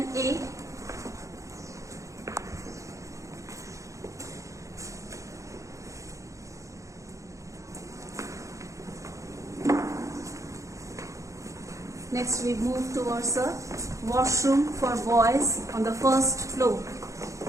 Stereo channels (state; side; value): late; left; 0.15 ms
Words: Next we move towards a washroom for boys on the first floor.